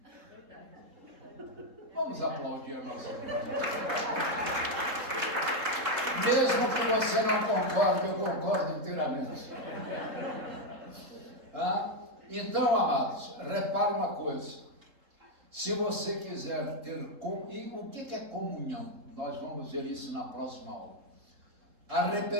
tudo. Vamos aplaudir a nossa vida. Mesmo que você não concorde, eu concordo inteiramente. Tá? Então, amados, repara uma coisa. Se você quiser ter... E o que é comunhão? Nós vamos ver isso na próxima aula.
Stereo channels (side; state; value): left; late; 3.7 ms